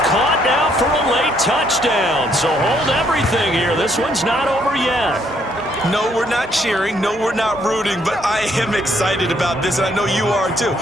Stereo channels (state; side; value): normal; both; correlation 0.69